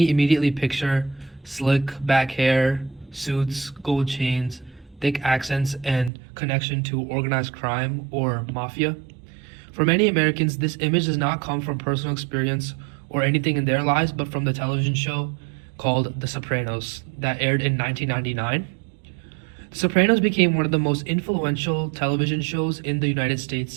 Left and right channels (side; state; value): left; drops out; at 6.1 s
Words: immediately picture slick back hair, suits, gold chains, thick accents, and connection to organized crime or mafia. For many Americans, this image does not come from personal experience or anything in their lives, but from the television show called The Sopranos that aired in 1999. The Sopranos became one of the most influential television shows in the United